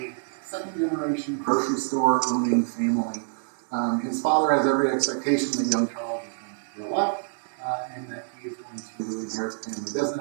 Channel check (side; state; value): left; silent; digital silence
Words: second-generation grocery store owning family. His father has every expectation that young Charles is going to grow up and that he is going to inherit the family